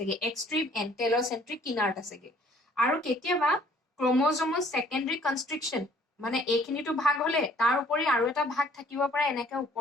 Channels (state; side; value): normal; both; correlation 0.58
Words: এক্সট্ৰিম এন্ড টেলোসেন্ট্ৰিক কিনাৰত আছেগে আৰু কেতিয়াবা ক্ৰমোজমৰ সেকেন্ডাৰী কনস্ট্ৰিকশন মানে এইখিনিটো ভাগ হলে তাৰ উপৰি আৰু এটা ভাগ থাকিব পাৰে এনেকে